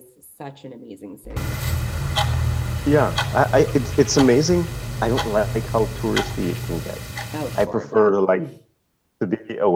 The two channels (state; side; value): identical; both; correlation 1.00